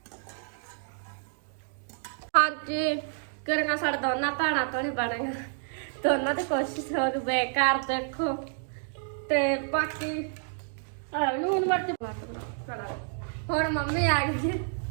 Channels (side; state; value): left; silent; 58 dB below the other